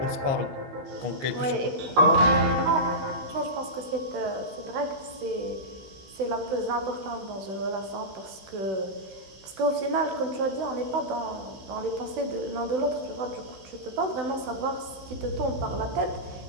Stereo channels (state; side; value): late; left; 16 ms